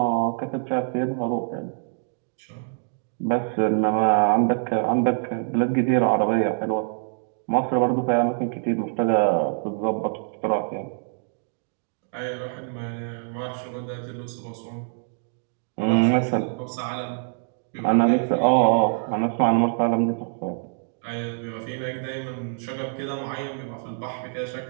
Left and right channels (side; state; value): left; silent; 62 dB below the other